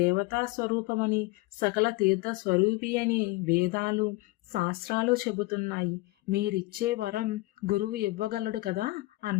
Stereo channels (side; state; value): right; quieter; 21.2 dB